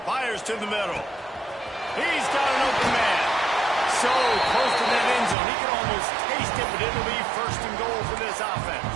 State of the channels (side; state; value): left; drops out; at 5.4 s